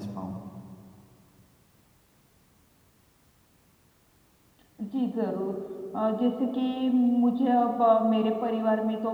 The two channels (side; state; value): both; identical; correlation 1.00